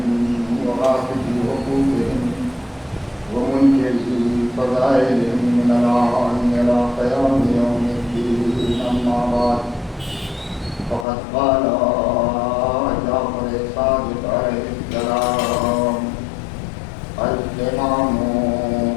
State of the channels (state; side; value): drops out; right; at 11.1 s